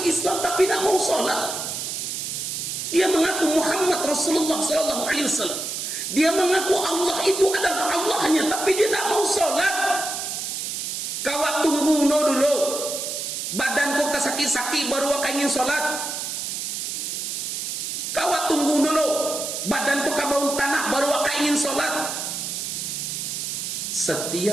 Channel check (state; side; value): noise; right; hiss, 4 dB below the sound